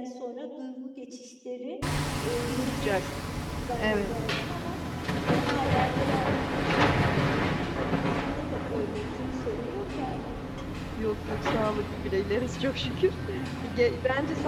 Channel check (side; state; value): both; identical; correlation 1.00